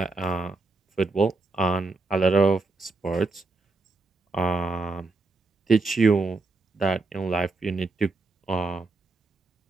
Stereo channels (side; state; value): left; quieter; 3.5 dB